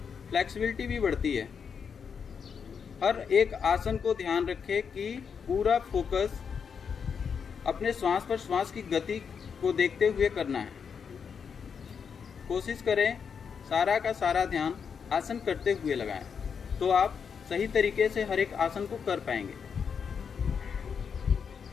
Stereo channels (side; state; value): right; quieter; 6.6 dB